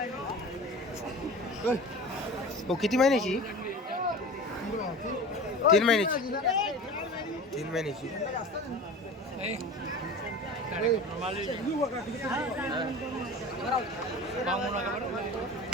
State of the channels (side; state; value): both; normal; correlation 0.35